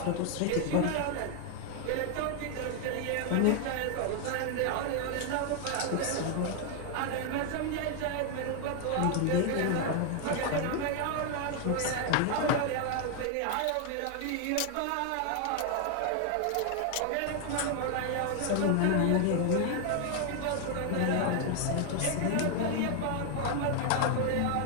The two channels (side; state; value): both; different; correlation 0.00